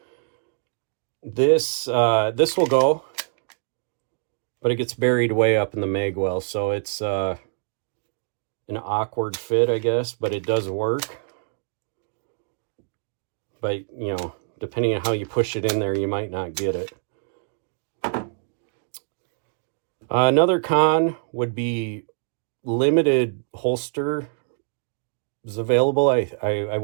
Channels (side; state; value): left; silent; digital silence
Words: This will go, but it gets buried way up in the mag well, so it's an awkward fit, I guess, but it does work. But, you know, depending on how you push it in there, you might not get it. Another con would be limited holster is available, I